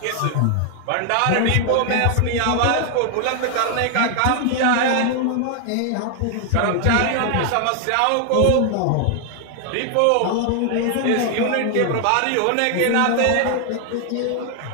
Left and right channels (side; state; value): both; different; correlation 0.00